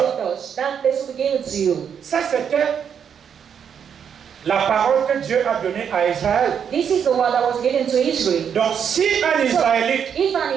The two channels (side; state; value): left; quieter; 7.7 dB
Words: touch, that place will be given to you. Ça, c'était la parole que Dieu a donnée à Israël. This is the word that was given to Israel. Donc, si un Israélite If